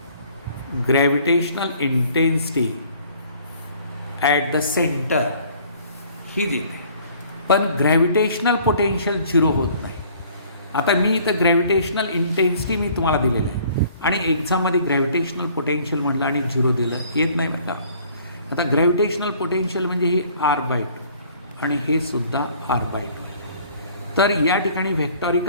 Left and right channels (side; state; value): both; inverted; correlation -0.55